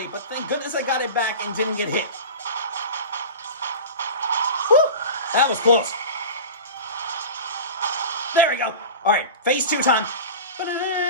but thank goodness I got it back and didn't get hit. That was close. There we go. All right, phase 2 time.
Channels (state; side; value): inverted; both; correlation -0.31